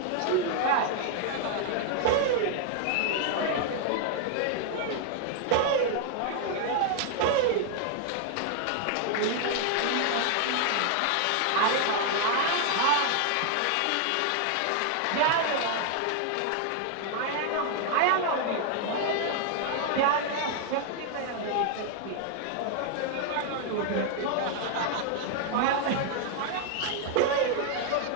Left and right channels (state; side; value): different; both; correlation 0.00